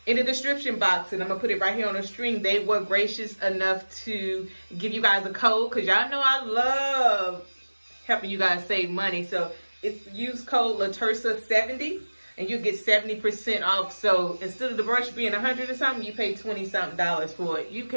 in the description box, and I'm gonna put it right here on the screen, they were gracious enough to give you guys a code, because y'all know I love helping you guys save money. So it's use code latersa70 and you get 70% off. So instead of the brush being $100 or something, you pay $20-something for it. You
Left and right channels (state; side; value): inverted; both; correlation -1.00